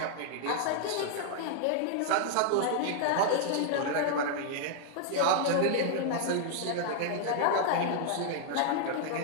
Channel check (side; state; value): both; different; correlation 0.00